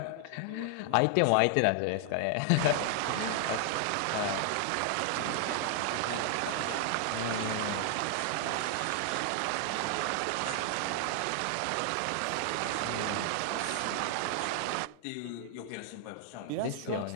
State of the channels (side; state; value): both; different; correlation 0.00